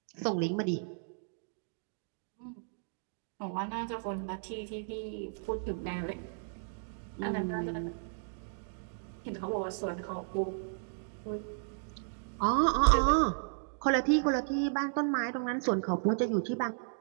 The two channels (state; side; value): silent; left; digital silence